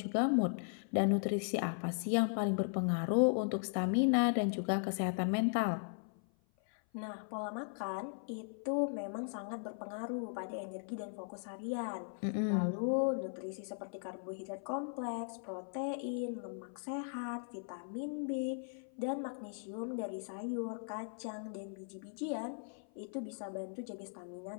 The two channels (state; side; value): silent; right; 52 dB below the other